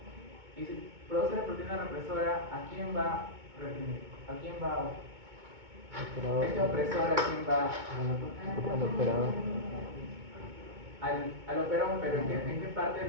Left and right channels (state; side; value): late; left; 2.2 ms